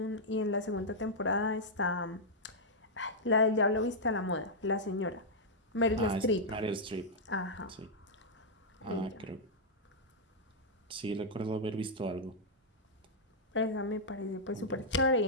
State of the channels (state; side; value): normal; both; correlation -0.06